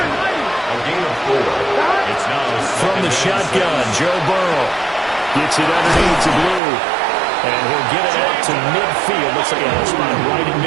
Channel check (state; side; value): drops out; left; at 6.6 s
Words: gain of 4. It's now from the shotgun, Joe Burrow gets it underneath to Blue. And he'll get it out to midfield. Looks like a spot right in